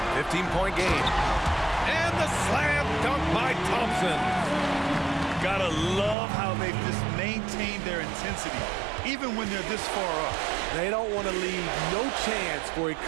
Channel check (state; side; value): drops out; left; at 6.2 s